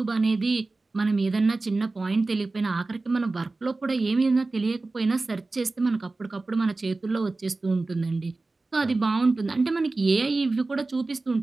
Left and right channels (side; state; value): left; quieter; 3.4 dB